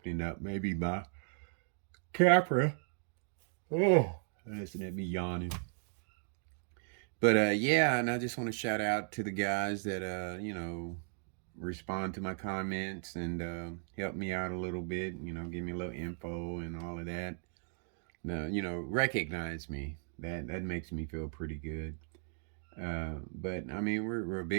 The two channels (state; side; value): silent; left; 54 dB below the other